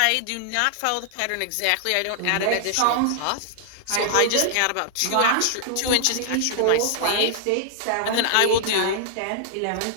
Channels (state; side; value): different; both; correlation -0.01